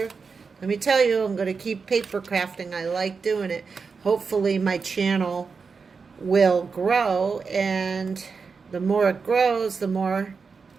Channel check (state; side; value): quieter; left; 5.1 dB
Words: Let me tell you, I'm going to keep paper crafting. I like doing it. Hopefully my channel will grow, and the more it grows, the more